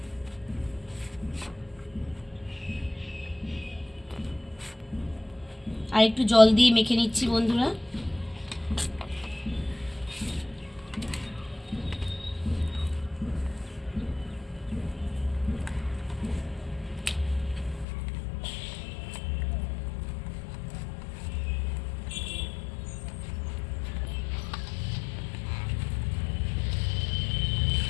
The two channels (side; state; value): right; drops out; at 17.9 s